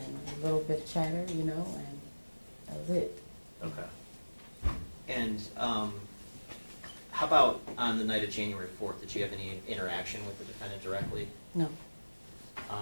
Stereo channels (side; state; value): both; inverted; correlation -1.00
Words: a little bit of chatter, you know, and that was it. Okay. And how about on the night of January 4th? Did you have any interaction with the defendant directly? No.